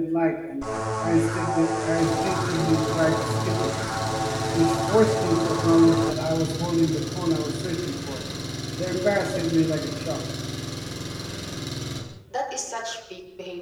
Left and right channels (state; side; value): identical; both; correlation 1.00